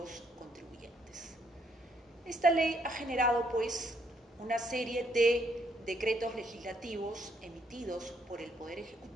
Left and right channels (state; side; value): normal; both; correlation 0.71